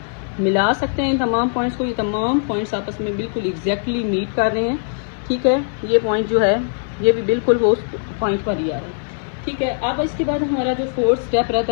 मिला सकते हैं इन तमाम पॉइंट्स को। ये तमाम पॉइंट्स आपस में बिल्कुल एग्जैक्टली मीट कर रहे हैं। ठीक है, ये पॉइंट जो है ये भी बिल्कुल वो उस पॉइंट पर ही आ रहा है। ठीक है, अब इसके बाद हमारा जो 4th स्टेप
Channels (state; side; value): silent; right; digital silence